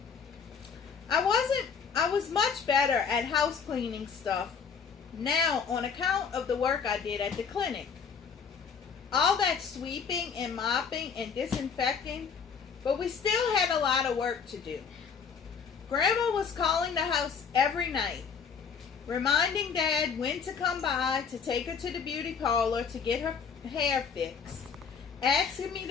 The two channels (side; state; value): right; quieter; 6.3 dB